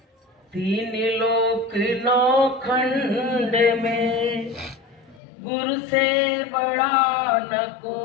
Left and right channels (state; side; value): drops out; right; at 5.2 s